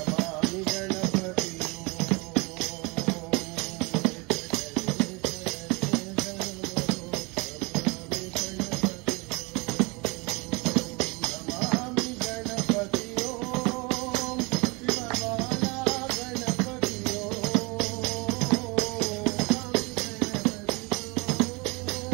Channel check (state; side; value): quieter; left; 27.3 dB